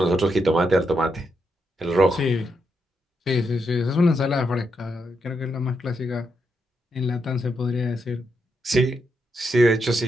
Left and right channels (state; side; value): normal; both; correlation 0.82